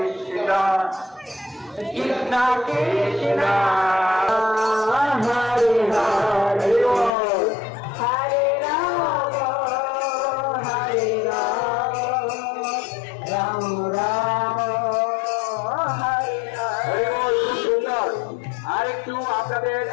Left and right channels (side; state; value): right; drops out; at 7.1 s